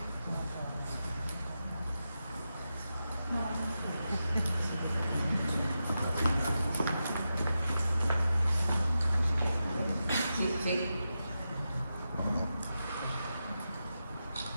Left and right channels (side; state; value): both; inverted; correlation -0.90